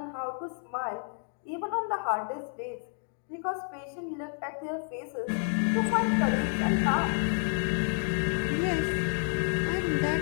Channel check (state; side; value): silent; right; 58 dB below the other